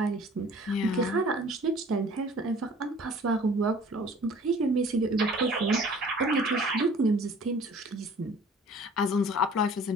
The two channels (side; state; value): both; normal; correlation 0.49